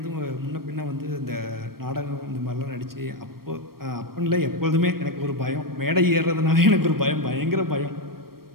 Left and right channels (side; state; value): left; late; 0.94 ms